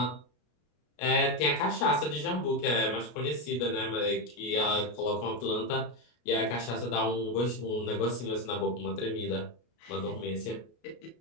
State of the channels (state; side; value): late; right; 33 ms